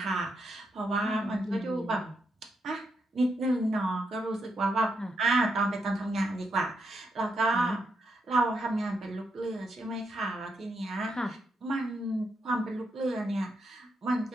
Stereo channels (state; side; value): normal; both; correlation 0.81